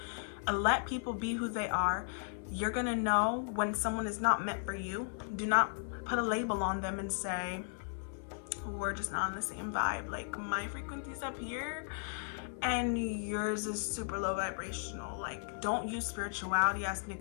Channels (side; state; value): right; silent; 54 dB below the other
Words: Let people be who they are. You're gonna know when someone is not meant for you. Do not put a label on them and say, we're just not on the same vibe. Like, my frequency's up here and yours is super low vibrational. Like, don't use spirituality as an